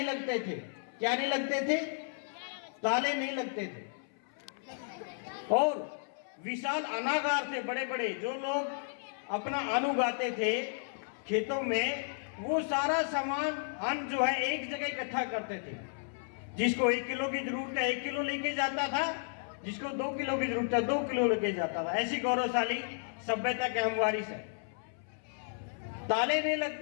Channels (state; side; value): silent; right; 56 dB below the other